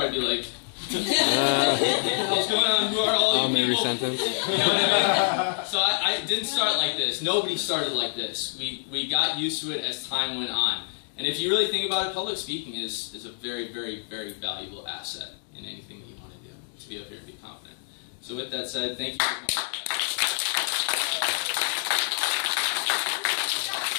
be like. What's going on? Who are all you people? Sentence. You know what I mean? So I didn't start like this. Nobody started like this. We got used to it as time went on. And if you really think about it, public speaking is a very, very, very valuable asset in anything that you want to do, to be up here and be confident. So with that said, thank you very much.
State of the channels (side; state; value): right; silent; digital silence